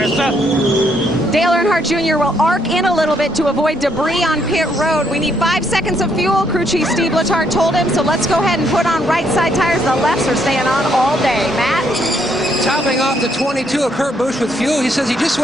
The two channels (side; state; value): both; normal; correlation 0.72